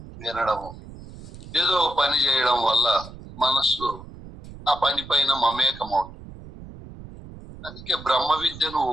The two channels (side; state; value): right; noise; rumble, 16 dB below the sound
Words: వినడము, ఏదో ఒక పని చేయడం వల్ల మనస్సు ఆ పని పైన మమేకమవుతుంది. అందుకే బ్రహ్మ విద్యను